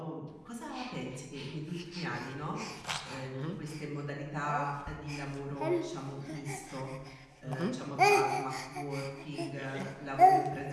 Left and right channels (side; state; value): both; identical; correlation 1.00